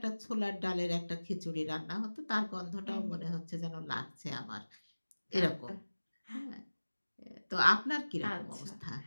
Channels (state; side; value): inverted; both; correlation -1.00